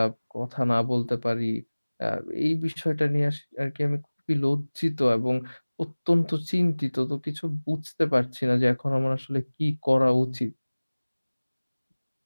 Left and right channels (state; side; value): inverted; both; correlation -1.00